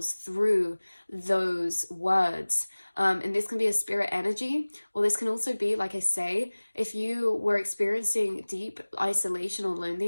through those words. And this can be a spirit energy, or this can also be, like I say, if you were experiencing deep isolation or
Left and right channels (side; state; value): both; inverted; correlation -1.00